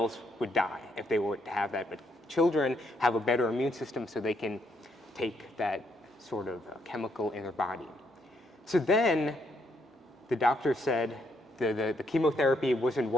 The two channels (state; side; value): normal; both; correlation 0.74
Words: would die if they were to have that. But children have a better immune system, so they can take that sort of chemical in their body. So then the doctor said, the chemotherapy wasn't